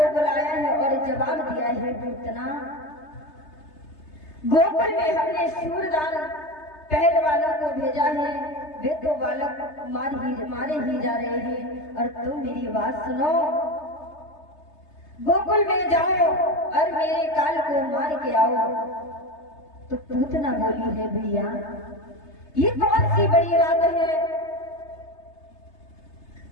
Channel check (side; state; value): right; late; 3.3 ms